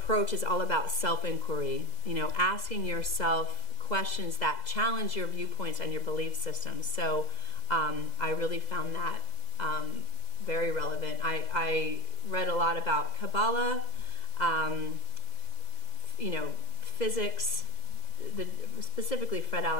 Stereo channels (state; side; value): late; right; 2.0 ms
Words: is all about self-inquiry, you know, asking yourself questions that challenge your viewpoints and your belief systems. So I really found that very relevant. I read a lot about Kabbalah, you know, physics, specifically Fred